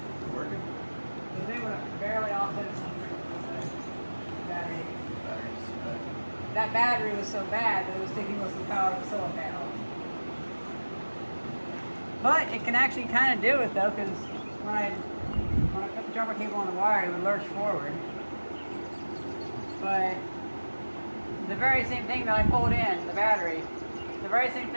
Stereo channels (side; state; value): both; inverted; correlation -1.00